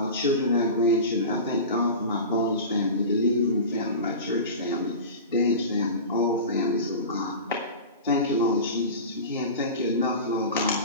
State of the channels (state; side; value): inverted; both; correlation -0.30